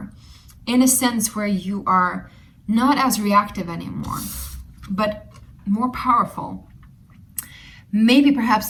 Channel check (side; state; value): both; identical; correlation 1.00